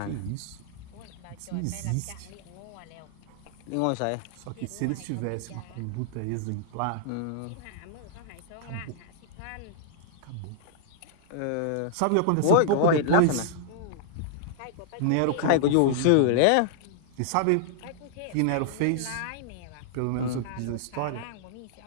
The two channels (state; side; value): different; both; correlation -0.01